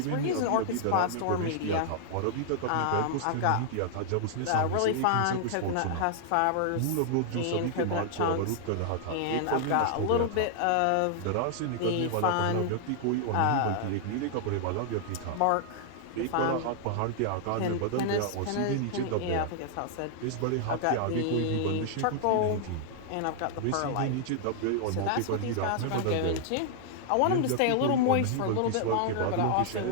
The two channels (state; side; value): different; both; correlation -0.01